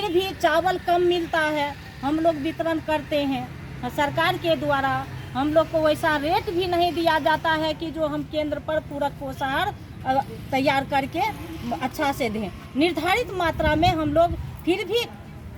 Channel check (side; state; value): both; identical; correlation 1.00